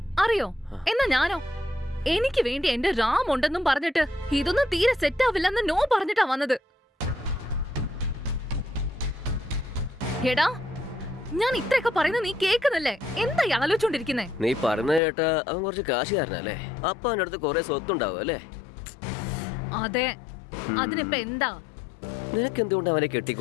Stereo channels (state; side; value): drops out; right; at 15.0 s